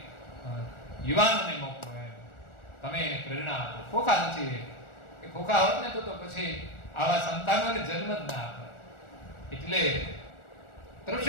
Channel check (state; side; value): late; right; 1.4 ms